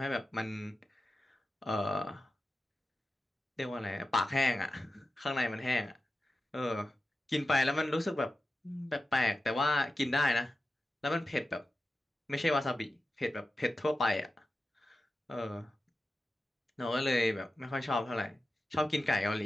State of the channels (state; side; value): normal; both; correlation 0.92